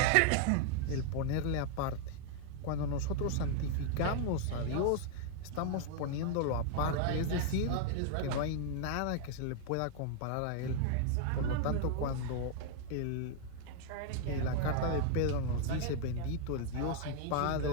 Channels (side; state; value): both; different; correlation 0.00